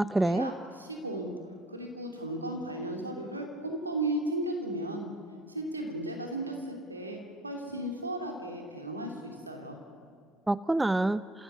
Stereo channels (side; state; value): both; normal; correlation 0.48